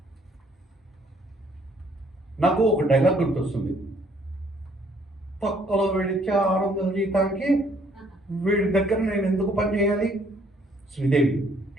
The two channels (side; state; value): both; normal; correlation 0.64